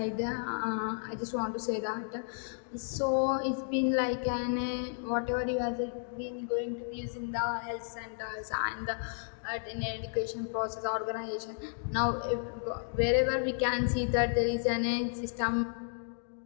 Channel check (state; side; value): silent; right; digital silence